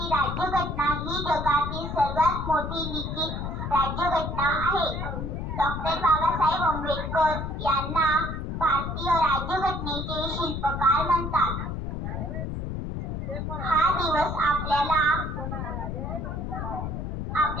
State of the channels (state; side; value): noise; left; rumble, 4 dB below the sound